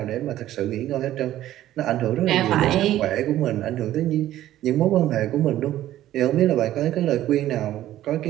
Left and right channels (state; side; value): quieter; left; 13.4 dB